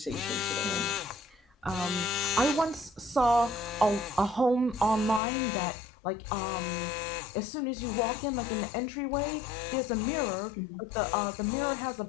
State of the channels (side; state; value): right; drops out; at 5.2 s